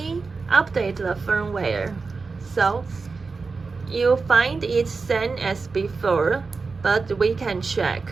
update the firmware. So you find it same as before, but we can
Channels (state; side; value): quieter; left; 4.4 dB